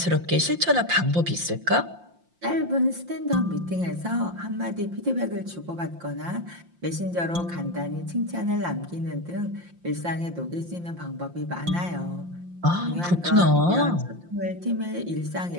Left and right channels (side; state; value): left; late; 5.7 ms